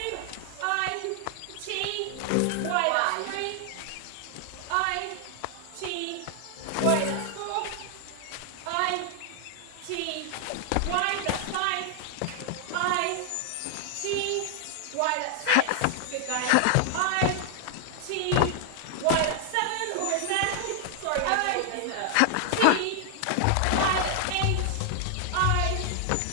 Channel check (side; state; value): both; different; correlation 0.00